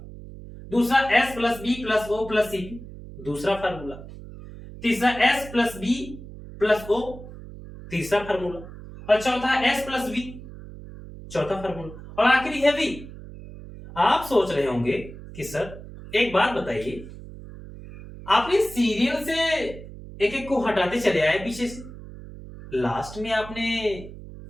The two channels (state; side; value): noise; right; hum, 14 dB below the sound